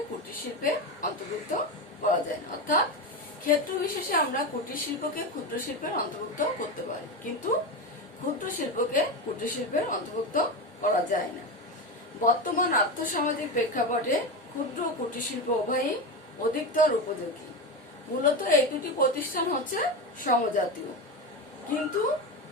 কুটির শিল্পে অন্তর্ভুক্ত করা যায় না। অর্থাৎ ক্ষেত্র বিশেষে আমরা কুটির শিল্পকে ক্ষুদ্র শিল্পের অন্তর্ভুক্ত করতে পারি, কিন্তু ক্ষুদ্র শিল্পকে কুটির শিল্পের অন্তর্ভুক্ত করা যায় না। বর্তমান আর্থসামাজিক প্রেক্ষাপটে ক্ষুদ্র ও কুটির শিল্প উভয়ই অধিকতর উপযোগী। মূলত এই দুটি প্রতিষ্ঠান হচ্ছে সমজাতীয়, কিন্তু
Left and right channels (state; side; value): normal; both; correlation 0.18